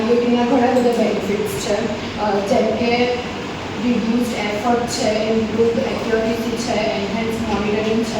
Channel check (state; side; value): identical; both; correlation 1.00